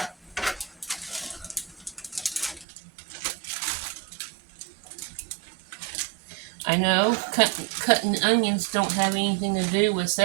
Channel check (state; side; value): drops out; left; at 2.7 s